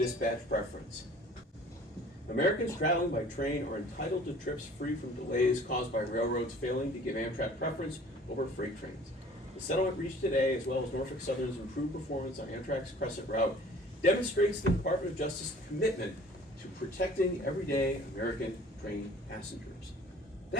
preference. Americans traveling by train are entitled to trips free from delays caused by railroads failing to give Amtrak preference over freight trains. The settlement reached today, as well as Norfolk Southern's improved performance on Amtrak's Crescent route, demonstrates the Department of Justice's commitment to protecting everyday American train passengers.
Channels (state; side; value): normal; both; correlation 0.49